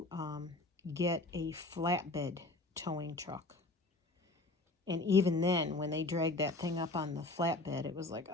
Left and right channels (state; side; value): quieter; right; 3.0 dB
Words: get a flatbed towing truck. And even then, when they dragged that thing up on the flatbed, it was like,